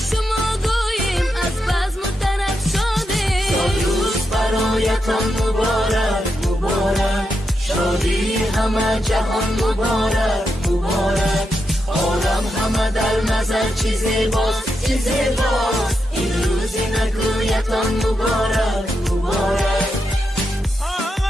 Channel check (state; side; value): normal; both; correlation 0.85